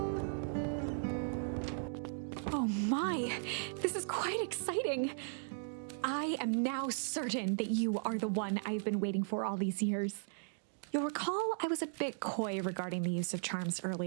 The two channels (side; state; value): left; silent; digital silence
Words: Oh my, this is quite exciting. I am now certain that you are the one I've been waiting for all these years. You'll recall I was a bit coy regarding the use of charms